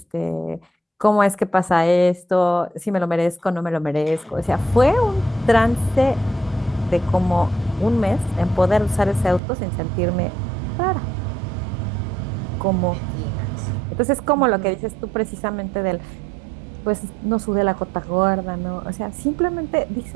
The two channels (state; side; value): drops out; left; at 9.4 s